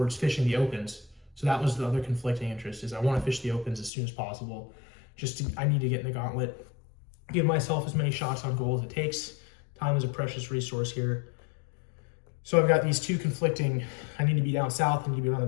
fishing the opens. So that was the other conflicting interest, is I want to fish the opens as soon as possible. I need to get in the gauntlet, give myself as many shots on goal as it takes. Time is a precious resource here. So I've got these two conflicting, I need to be down south, I need to be around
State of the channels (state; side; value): drops out; right; at 3.9 s